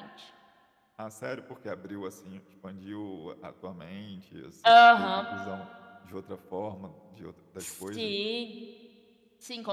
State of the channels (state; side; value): identical; both; correlation 1.00